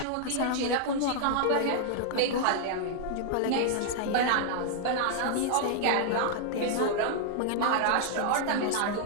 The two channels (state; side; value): different; both; correlation -0.01